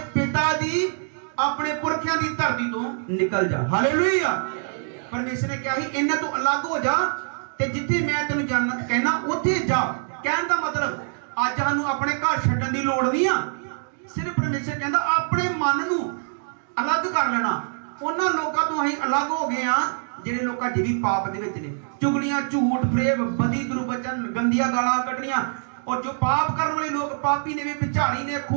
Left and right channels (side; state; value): left; silent; digital silence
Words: पिता दी, अपने पुरखियां दी धरती तो निकल जा। हालेलुया। परमेश्वर ने क्या ही इन्हां तो अलग हो जा ते जिथे मैं तेनू जाना कहना उथे जा। कहने का मतलब अज सानू अपने घर छड्डण दी लोड़ नहीं आ, सिर्फ परमेश्वर कहंदा अपने मन नू अलग कर लेना। उन्हां लोकां तो असीं अलग हो गए आ ਜਿਹੜੇ ਲੋਕ ਅਜੇ ਵੀ ਪਾਪ ਦੇ ਵਿੱਚ ਨੇ, ਚੁਗਲੀਆਂ, ਝੂਠ, ਫਰੇਬ, ਬਦੀ, ਦੁਰਵਚਨ, ਗੰਦੀਆਂ ਗਾਲਾਂ ਕੱਢਣੀਆਂ, और जो पाप करने वाले लोग पापी ने, विचारी ने,